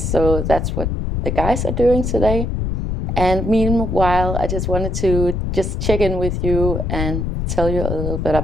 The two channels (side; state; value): left; noise; rumble, 1 dB below the sound